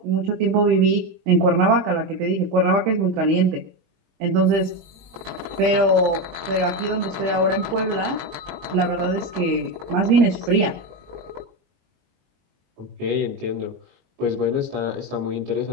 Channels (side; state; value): left; late; 22 ms